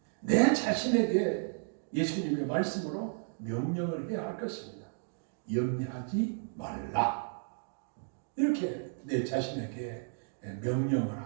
내 자신에게 예수님의 말씀으로 명령을 해야 할 것입니다. 염려하지 말라. 이렇게 내 자신에게 명령을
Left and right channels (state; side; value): silent; left; digital silence